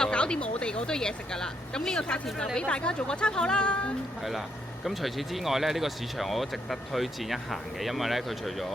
搞掂我哋嗰堆嘢食㗎啦。咁呢個價錢就俾大家做個參考啦。係啦，咁除此之外咧，呢個市場我都值得推薦一行嘅，因為咧佢除咗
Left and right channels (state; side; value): normal; both; correlation 0.76